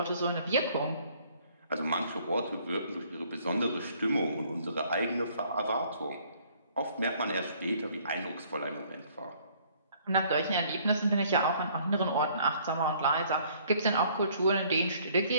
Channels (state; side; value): inverted; both; correlation -0.61